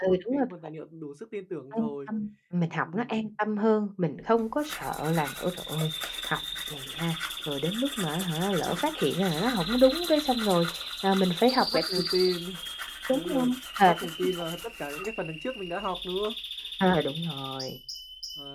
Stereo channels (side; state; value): both; identical; correlation 1.00